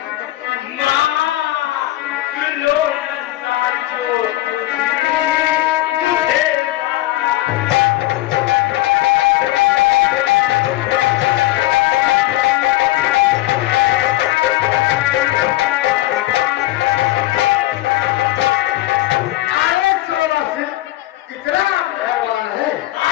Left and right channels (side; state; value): right; quieter; 16.6 dB